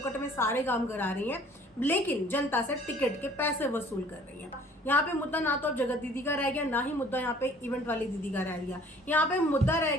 में सारे काम करा रही हैं, लेकिन जनता से टिकट के पैसे वसूल कर रही हैं। यहाँ पे मुद्दा ना तो जगत दीदी का रह गया, ना ही मुद्दा यहाँ पे इवेंट वाली दीदी का रह गया। यहाँ पे मुद्दा रह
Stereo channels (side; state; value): both; normal; correlation 0.54